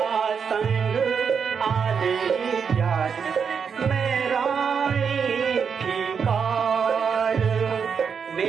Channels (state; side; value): quieter; left; 6.5 dB